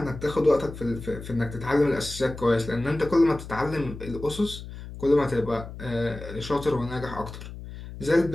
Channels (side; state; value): left; noise; hum, 12 dB below the sound